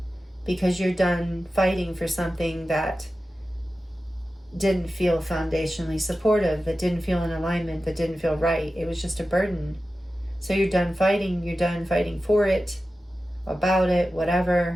Because you're done fighting for something that didn't feel foundationally supportive, that didn't feel in alignment, that didn't feel right. It was just a burden. So you're done fighting for it, about it,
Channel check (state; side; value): normal; both; correlation 0.93